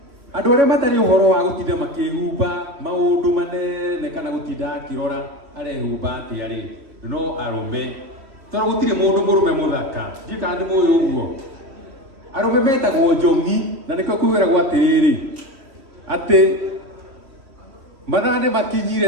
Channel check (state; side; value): late; left; 3.1 ms